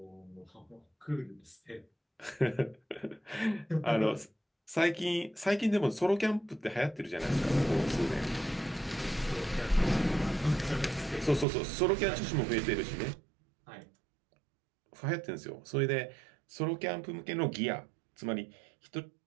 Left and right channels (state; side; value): drops out; left; at 11.5 s